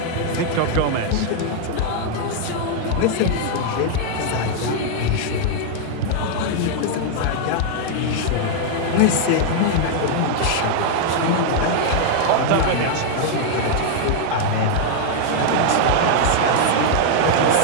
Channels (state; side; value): different; both; correlation 0.00